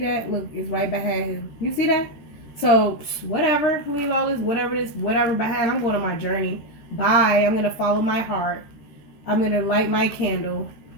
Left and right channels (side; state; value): right; late; 13 ms